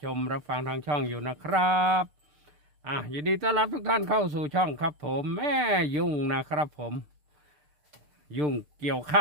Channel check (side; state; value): left; late; 6.7 ms